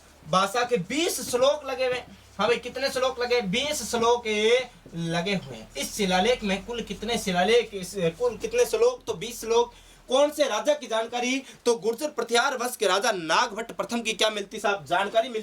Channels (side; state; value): both; identical; correlation 1.00